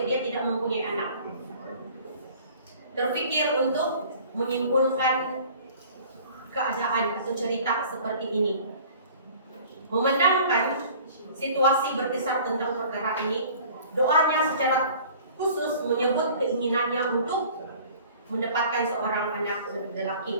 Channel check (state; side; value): inverted; both; correlation -0.48